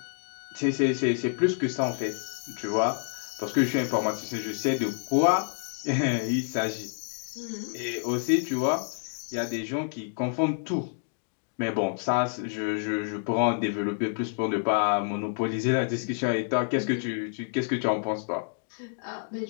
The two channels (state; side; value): silent; right; digital silence